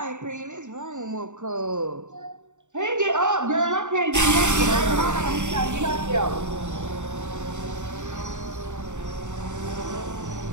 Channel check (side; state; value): left; late; 0.85 ms